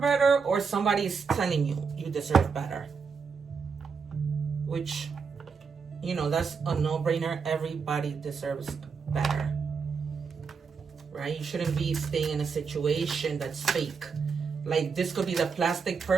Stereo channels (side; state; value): left; quieter; 5.6 dB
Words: better, or somebody is telling you you deserve better. Which, you know, that's a no-brainer. Everybody deserves better, right? You shouldn't be staying in a situation that's fake. Like, this could be the plastic